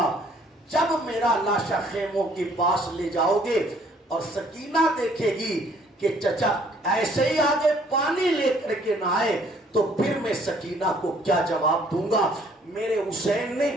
جب میرا لاشا خیموں کے پاس لے جاؤ گے اور سکینہ دیکھے گی کہ چچا ایسے ہی آگے پانی لے کر کے نہ آئے تو پھر میں سکینہ کو کیا جواب دوں گا۔ میرے حسین نے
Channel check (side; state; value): both; normal; correlation 0.61